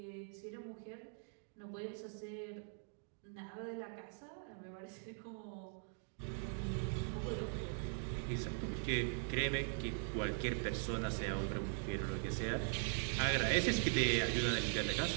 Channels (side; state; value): left; silent; 50 dB below the other